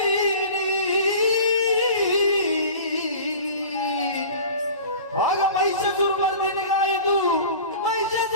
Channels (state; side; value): inverted; both; correlation -0.39